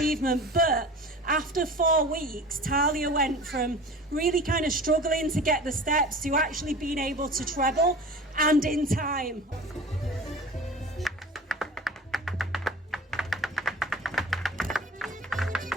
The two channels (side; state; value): both; normal; correlation 0.38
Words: But after 4 weeks, Talia went from really kind of struggling to get the steps to actually being able to treble and in time.